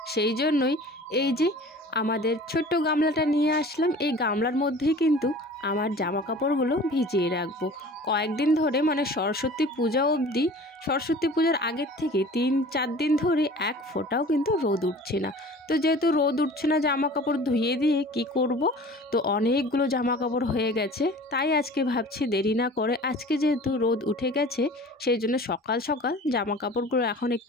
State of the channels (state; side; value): normal; both; correlation 0.43